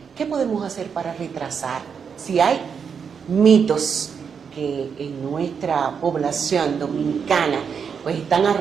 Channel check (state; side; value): quieter; left; 6.6 dB